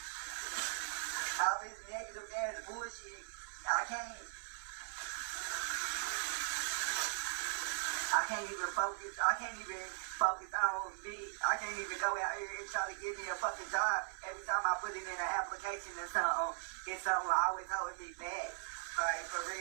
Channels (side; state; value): left; silent; 52 dB below the other